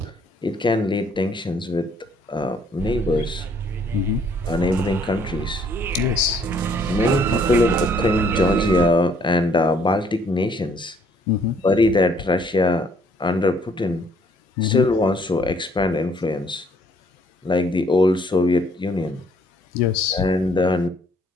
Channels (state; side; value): normal; both; correlation 0.64